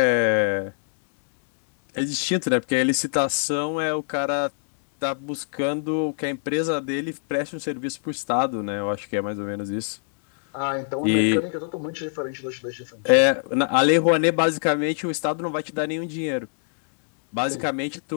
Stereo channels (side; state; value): right; silent; digital silence